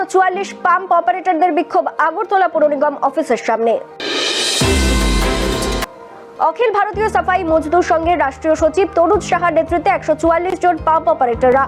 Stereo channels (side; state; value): both; identical; correlation 1.00